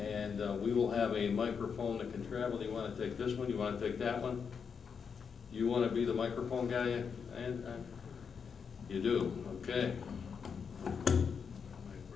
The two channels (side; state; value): right; quieter; 6.3 dB